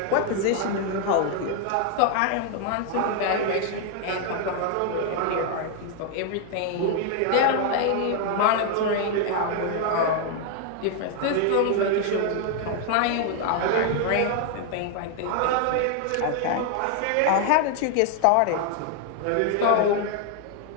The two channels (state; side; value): different; both; correlation 0.00